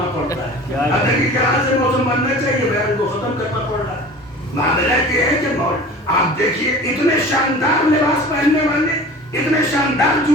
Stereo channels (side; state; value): both; normal; correlation 0.40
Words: پڑتا ہے. اگر کی طرح سے موسم بننا چاہیے، بیان کو ختم کرنا پڑ رہا ہے. معاملہ یہ ہے کہ آپ دیکھیے اتنے شاندار لباس پہننے والے، اتنے شاندار